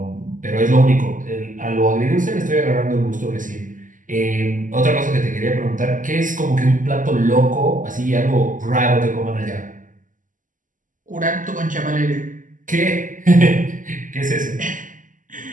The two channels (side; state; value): left; late; 0.38 ms